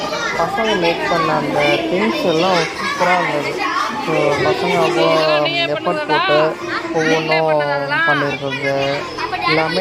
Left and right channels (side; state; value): both; identical; correlation 1.00